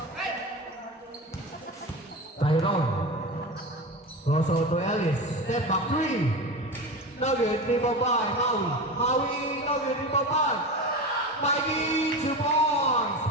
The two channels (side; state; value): both; normal; correlation 0.26